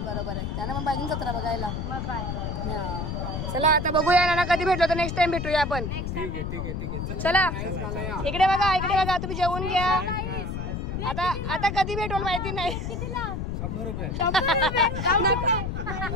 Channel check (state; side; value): noise; left; rumble, 4 dB below the sound